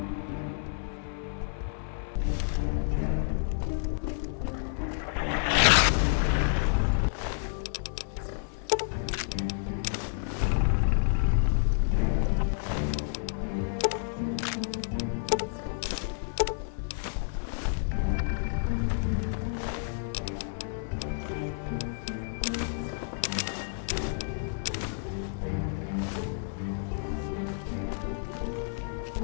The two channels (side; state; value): right; silent; 58 dB below the other